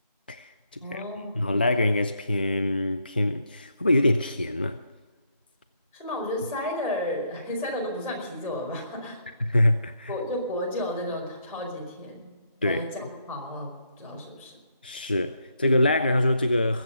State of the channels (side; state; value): both; inverted; correlation -0.76